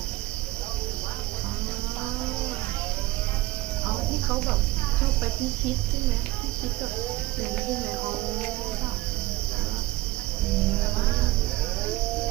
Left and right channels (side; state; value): left; quieter; 17.9 dB